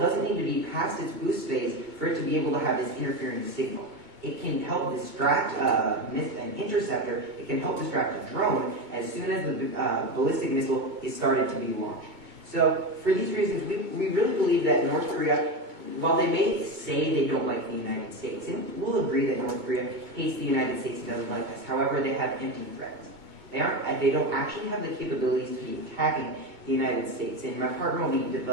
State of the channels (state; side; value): late; left; 2.2 ms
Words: need to be past its boost phase for it to be able to have this interfering signal. It can help distract an interceptor, it can help distract a drone as soon as the ballistic missile is started to be launched. So, for these reasons, we really believe that North Korea, while they may say they don't like the United States, and we'll agree that North Korea hates the United States and doesn't like us, however, they have empty threats. They don't actually have the capabilities to be attacking the United States, and my partner will be